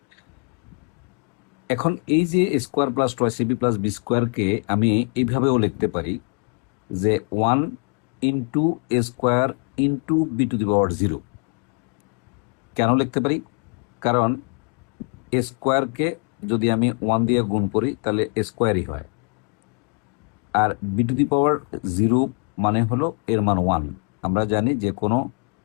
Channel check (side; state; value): right; quieter; 39.7 dB